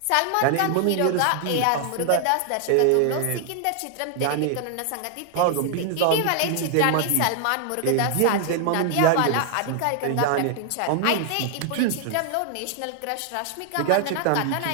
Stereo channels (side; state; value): both; different; correlation 0.00